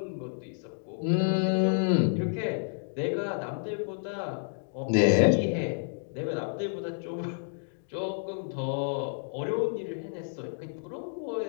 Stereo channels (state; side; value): silent; right; digital silence